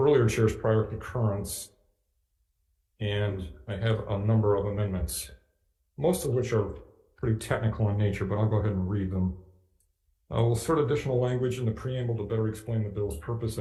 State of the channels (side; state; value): both; identical; correlation 1.00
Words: chair's prior concurrence, and I have a number of amendments, most of which are pretty technical in nature, but I'll go ahead and read them. We'll insert additional language in the preamble to better explain the bill's purpose